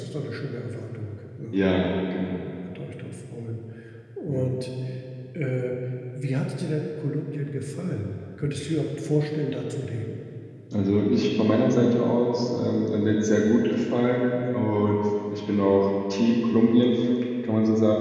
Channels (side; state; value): both; identical; correlation 1.00